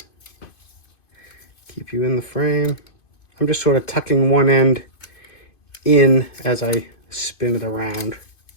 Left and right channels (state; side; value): late; right; 2.5 ms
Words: keep you in the frame. I'm just sort of tucking one end in as I spin it around.